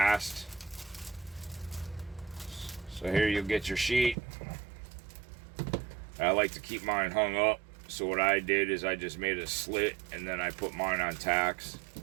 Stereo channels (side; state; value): left; drops out; at 4.2 s